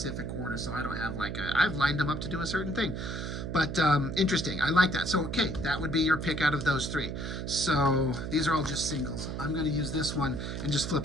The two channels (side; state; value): right; noise; hum, 5 dB below the sound